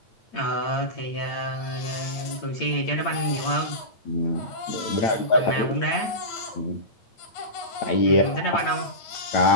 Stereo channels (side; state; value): right; late; 8.7 ms